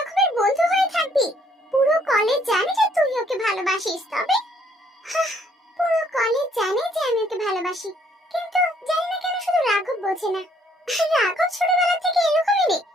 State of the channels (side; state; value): both; normal; correlation 0.65